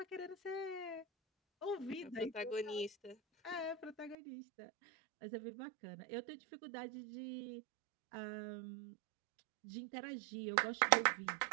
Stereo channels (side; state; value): left; drops out; at 4.2 s